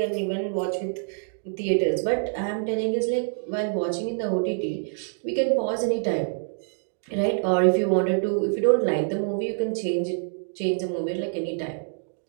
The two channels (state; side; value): silent; left; digital silence